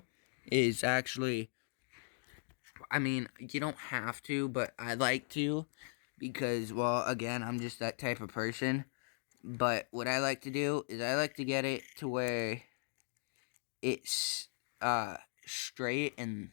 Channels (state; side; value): silent; right; digital silence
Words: is actually, I mean, you don't have to, but I like to, because, well, again, I'm just that type of person. But what I like to do is I like to get it to where it's straight